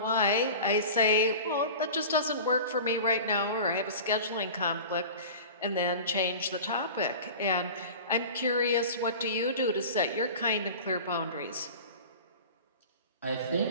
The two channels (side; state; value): both; inverted; correlation -0.36